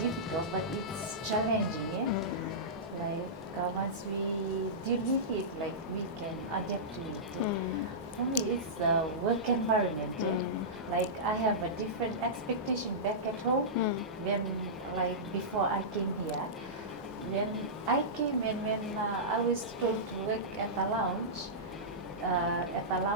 but it's challenging. Yeah? Like, once we deal with it, like, we can adapt to it. Yeah? For me, it's the work environment. Yeah? Like, I have a different expectation back at home when, like, before I came here. When I came and when I was told to work at a lounge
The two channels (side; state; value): both; normal; correlation -0.16